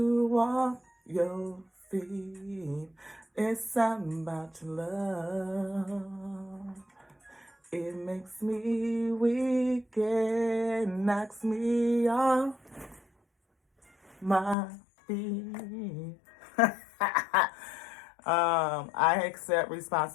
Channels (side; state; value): right; drops out; at 14.6 s